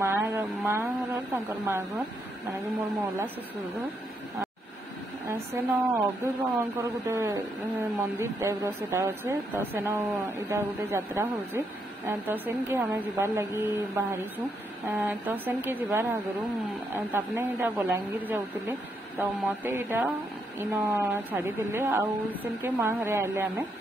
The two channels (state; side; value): normal; both; correlation 0.77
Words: घर माँ घर माने कि मोर मौला ससुर घर सेन अब्दुल बाबा गोटे मंदिर टाइप रोटा अच्छे। तो सेन इटा गोटे यात्रा होचे। तो सेन के हमें जीवार लगी बाहरी छू। तो सेन के जीवार आगरू तापने इटा बलांगीर जाऊले। तो मते इटा इन छाड़ी देले सेन के माँ घरे आइले आमे